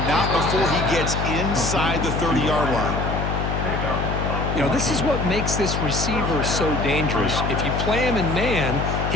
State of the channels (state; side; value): noise; left; hum, 2 dB below the sound